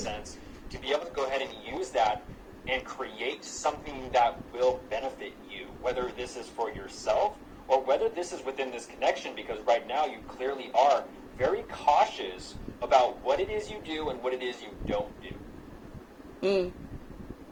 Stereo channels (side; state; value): both; identical; correlation 1.00